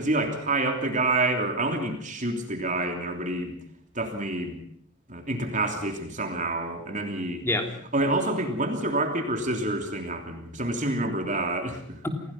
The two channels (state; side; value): normal; both; correlation 0.14